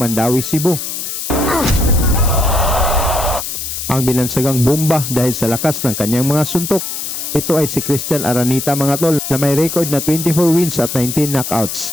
Cebu. Ang binansagang bomba dahil sa lakas ng kanyang mga suntok. Ito ay si Christian Aranita mga tol na may record na 24 wins at 19 knockouts.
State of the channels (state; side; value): noise; left; hiss, 5 dB below the sound